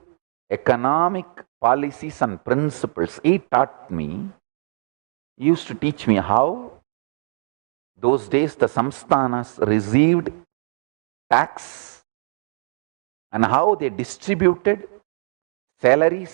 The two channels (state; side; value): silent; left; 64 dB below the other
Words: economic policies and principles. He taught me, he used to teach me how those days the samsthanas received tax and how they distributed